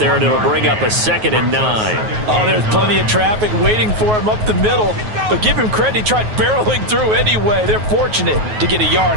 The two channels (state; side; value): late; left; 9.4 ms